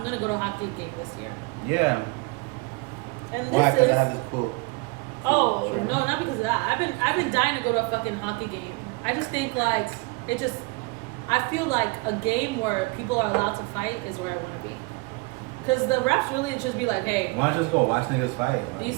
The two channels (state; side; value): quieter; left; 26.8 dB